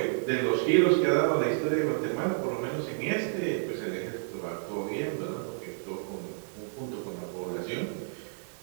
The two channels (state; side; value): silent; left; digital silence